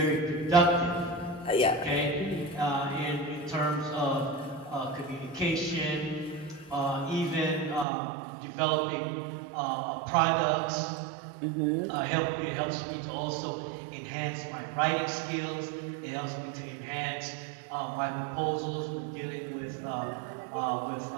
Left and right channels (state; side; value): drops out; left; at 7.9 s